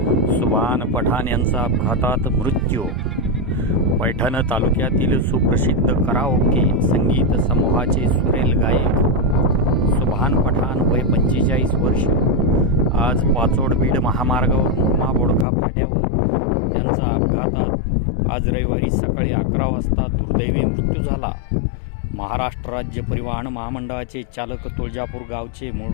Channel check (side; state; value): right; drops out; at 15.5 s